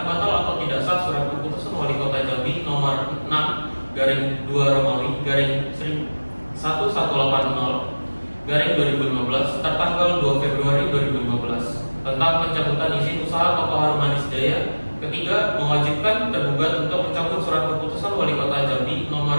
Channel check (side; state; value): both; inverted; correlation -1.00